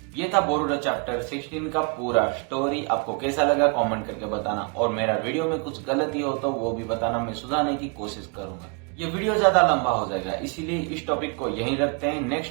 ये था बोरुटो चैप्टर 16 का पूरा स्टोरी। आपको कैसा लगा कमेंट करके बताना, और मेरा वीडियो में कुछ गलती हो तो वो भी बताना, मैं सुधारने की कोशिश करूंगा। ये वीडियो ज्यादा लंबा हो जाएगा, इसीलिए इस टॉपिक को यहीं रखते हैं।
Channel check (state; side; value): quieter; left; 34.7 dB